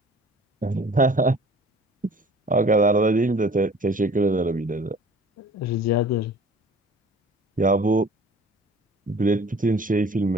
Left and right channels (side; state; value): both; normal; correlation 0.48